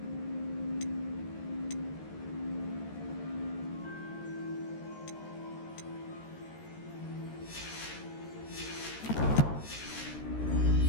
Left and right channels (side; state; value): right; late; 13 ms